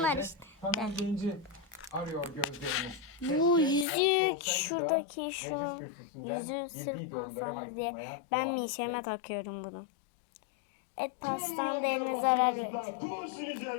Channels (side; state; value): right; drops out; at 3.9 s